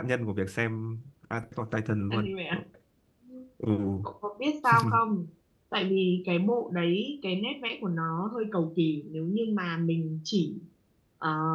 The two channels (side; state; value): both; identical; correlation 1.00